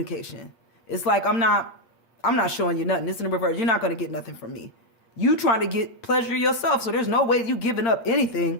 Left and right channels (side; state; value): right; late; 8.7 ms